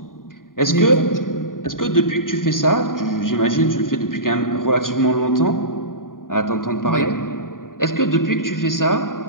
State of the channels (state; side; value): late; right; 0.90 ms